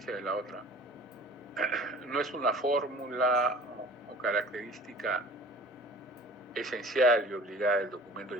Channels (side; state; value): both; normal; correlation 0.45